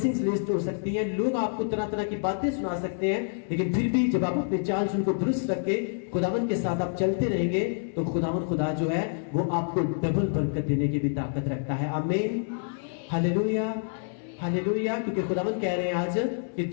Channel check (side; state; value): right; silent; 60 dB below the other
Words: लेट हो सकती है, लोग आपको तरह तरह की बातें सुना सकते हैं, लेकिन फिर भी जब आप अपने चाल चलन को दुरुस्त रख के खुदावन के साथ आप चलते रहेंगे, तो खुदा जो है वो आपको डबल बरकत देने की भी ताकत रखता है। आमीन, हालेलुया, हालेलुया। क्योंकि खुदावन कह रहे हैं आज कि